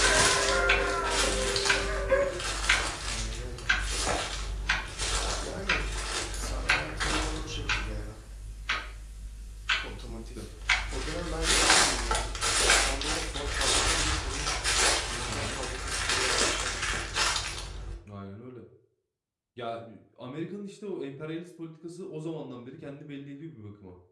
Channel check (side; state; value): both; identical; correlation 1.00